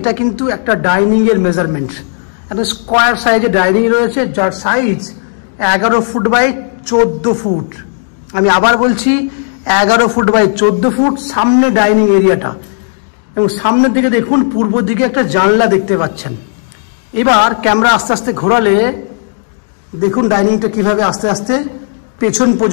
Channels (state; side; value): silent; right; digital silence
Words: কিন্তু একটা ডাইনিংয়ের মেজারমেন্ট। একটা স্কোয়ার সাইজে ডাইনিং রয়েছে, যার সাইজ 11 ফুট বাই 14 ফুট। আমি আবার বলছি 11 ফুট বাই 14 ফুট সামনে ডাইনিং এরিয়াটা। এবং সামনের দিকে দেখুন পূর্ব দিকে একটা জানলা দেখতে পাচ্ছেন। এবার ক্যামেরা আস্তে আস্তে ঘোরালে দেখুন ডাইনিংটা কিভাবে আস্তে আস্তে পেছন